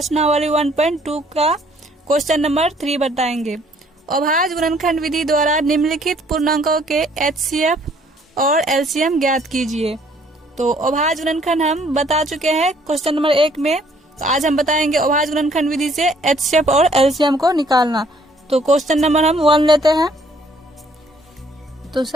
1.2 का क्वेश्चन नंबर 3 बताएंगे। अभाज्य गुणनखंड विधि द्वारा निम्नलिखित पूर्णांकों के एचसीएफ और एलसीएम ज्ञात कीजिए। तो अभाज्य गुणनखंड हम बता चुके हैं क्वेश्चन नंबर 1 में। तो आज हम बताएंगे अभाज्य गुणनखंड विधि से एचसीएफ और एलसीएम को निकालना। तो क्वेश्चन नंबर हम 1 लेते हैं। तो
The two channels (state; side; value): normal; both; correlation 0.62